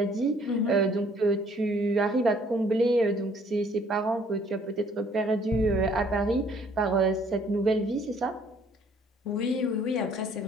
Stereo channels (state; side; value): normal; both; correlation 0.61